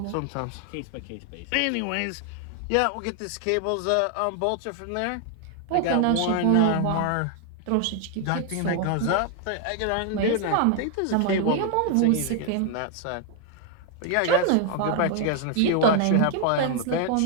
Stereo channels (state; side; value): different; both; correlation 0.00